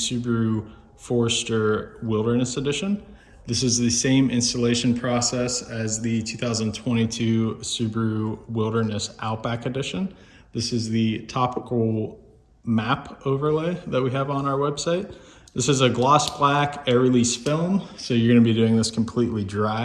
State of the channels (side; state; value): both; identical; correlation 1.00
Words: Forester Wilderness Edition. This is the same installation process as the 2022 Subaru Wilderness Outback Edition. This is the topical map overlay that we have on our website. This is a gloss black air release film, so you're going to be doing this completely